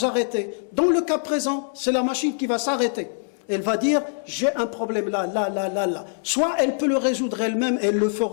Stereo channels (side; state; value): right; silent; digital silence